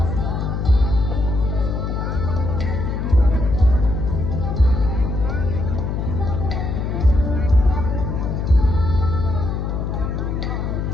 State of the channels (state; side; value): noise; left; hum, 2 dB below the sound